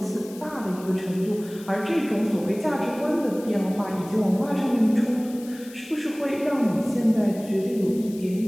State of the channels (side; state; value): left; noise; hiss, 20 dB below the sound